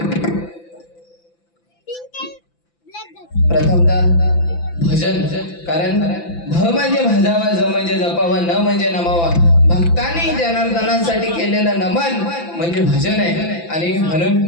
प्रथमतः भजन, कारण भ म्हणजे भजावा, ज म्हणजे जपावा, न म्हणजे नमावा. भक्तांनी जनार्दनासाठी केलेलं नमन म्हणजे भजन आहे. आणि म्हणून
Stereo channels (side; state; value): right; late; 5.9 ms